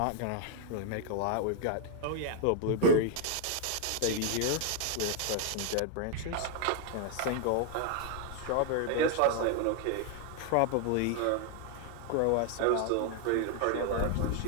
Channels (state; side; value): different; both; correlation 0.00